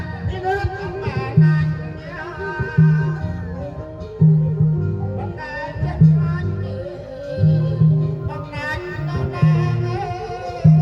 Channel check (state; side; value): identical; both; correlation 1.00